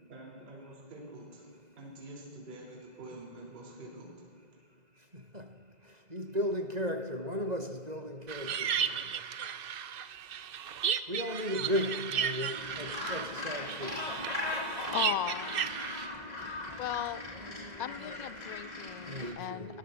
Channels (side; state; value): left; late; 2.6 ms